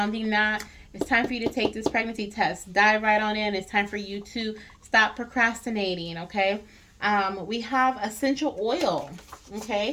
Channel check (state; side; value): identical; both; correlation 1.00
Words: that, it's time for you to take this pregnancy test. Dive right on in. It's time for you to stop procrastinating, okay? We have essential oil,